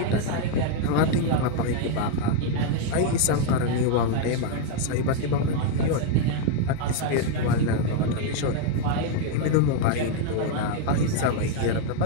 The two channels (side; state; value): both; different; correlation 0.01